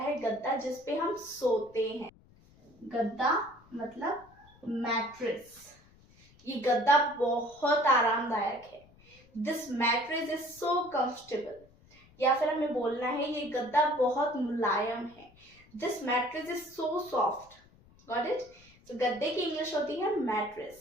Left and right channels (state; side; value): noise; left; rumble, 27 dB below the sound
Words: गद्दा जिसपे हम सोते हैं। गद्दा मतलब मैट्रेस। ये गद्दा बहुत आरामदायक है। This mattress is so comfortable. या फिर हमें बोलना है ये गद्दा बहुत मुलायम है। This mattress is so soft. Got it? तो गद्दे की इंग्लिश होती है मैट्रेस।